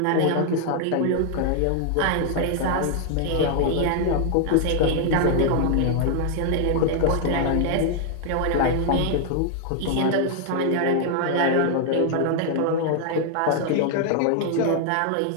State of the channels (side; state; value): both; different; correlation 0.00